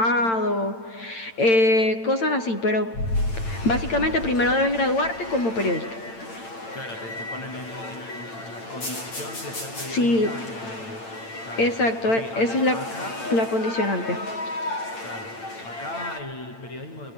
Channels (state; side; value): late; right; 8.9 ms